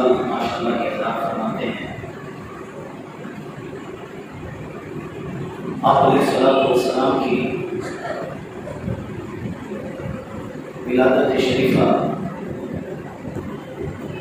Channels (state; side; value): identical; both; correlation 1.00